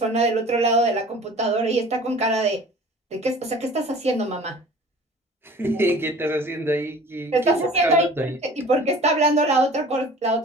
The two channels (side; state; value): both; normal; correlation 0.45